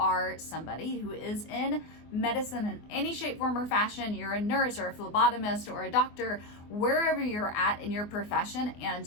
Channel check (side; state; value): right; late; 24 ms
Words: somebody who is in medicine in any shape, form, or fashion, you're a nurse or a phlebotomist or a doctor, wherever you're at in your profession,